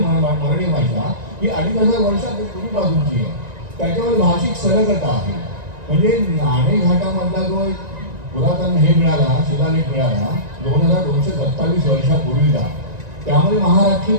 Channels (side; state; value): left; late; 1.9 ms